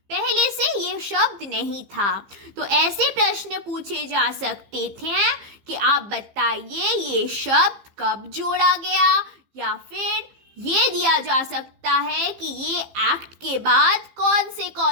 पहले से ये शब्द नहीं था। तो ऐसे प्रश्न पूछे जा सकते थे कि आप बताइए ये शब्द कब जोड़ा गया, या फिर ये दिया जा सकता है कि ये एक्ट के बाद कौन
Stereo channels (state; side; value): late; left; 15 ms